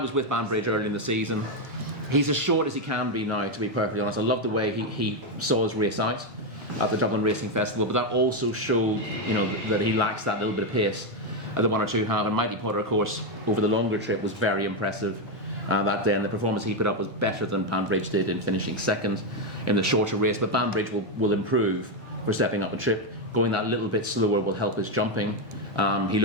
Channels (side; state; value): both; normal; correlation 0.05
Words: with Banbridge early in the season. He's as short as he can be now, to be perfectly honest. I love the way he saw his race out at the Dublin Racing Festival, but that also showed that he lacks that little bit of pace that one or two have. And Mighty Potter, of course, over the longer trip was very impressive that day, and the performance he put up was better than Banbridge did in finishing second in the shorter race. But Banbridge will improve for stepping up a trip. Going that little bit slower will help his jumping. He